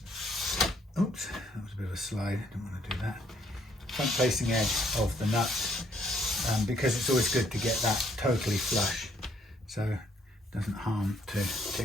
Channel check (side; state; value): both; normal; correlation 0.68